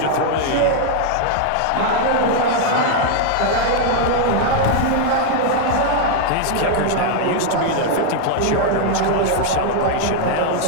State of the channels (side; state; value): both; different; correlation 0.00